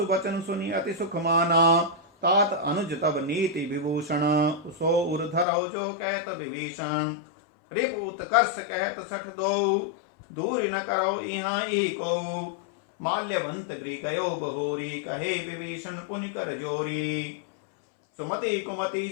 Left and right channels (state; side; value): drops out; right; at 5.5 s